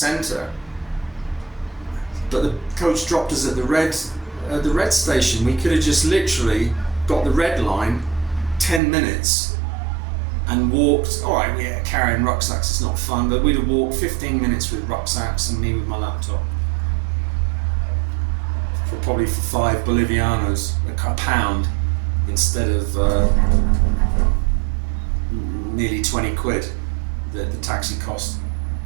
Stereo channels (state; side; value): drops out; left; at 8.8 s